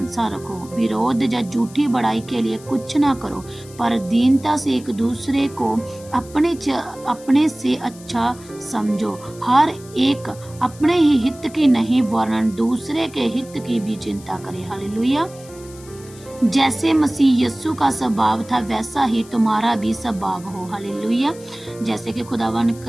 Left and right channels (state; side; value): noise; left; hiss, 21 dB below the sound